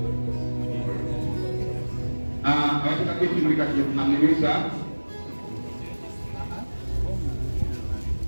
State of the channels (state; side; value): inverted; both; correlation -1.00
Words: abateekayo ekituli kati Muhamiliza